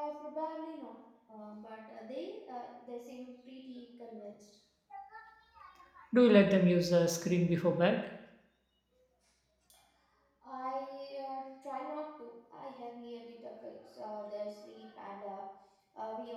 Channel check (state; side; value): identical; both; correlation 1.00